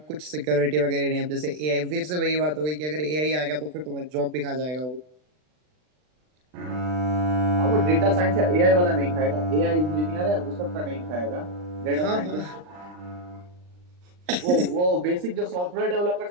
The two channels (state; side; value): late; left; 39 ms